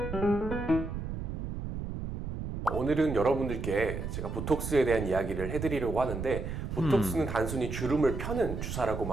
오늘은 여러분들께 제가 보톡스에 대한 이야기를 해드리려고 하는데 보톡스는 단순히 주름을 펴는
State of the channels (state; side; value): noise; right; rumble, 5 dB below the sound